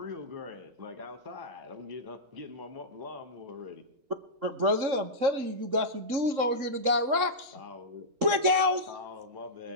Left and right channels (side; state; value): left; late; 3.7 ms